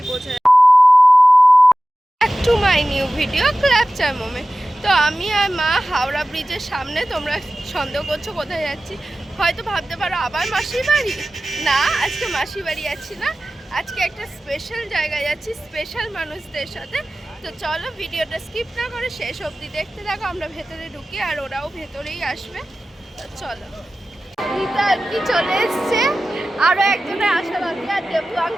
বোঝা যায়। Back to my new video ক্ল্যাপচার মোমেন্ট। তো আমি আর মা হাওড়া ব্রিজের সামনে। তোমরা সন্দেহ করছো কোথায় যাচ্ছি, হয়তো ভাবতে পারো আবার মাসির বাড়ি। না, আজকে মাসির বাড়ি যাচ্ছি না, আজকে একটা স্পেশাল জায়গায় যাচ্ছি স্পেশাল মানুষদের সাথে। তো চলো ভিডিওটা স্কিপ না করে শেষ অবধি দেখতে থাকো। আমরা ভেতরে ঢুকি আর ওরাও ভেতরেই আসবে। তো চলো। রীতা কি চলে এসছে, আরো একজনের আশা বাকি, আর দেবু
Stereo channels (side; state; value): both; normal; correlation 0.95